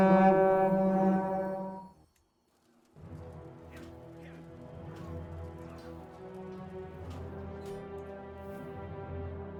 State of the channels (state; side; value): identical; both; correlation 1.00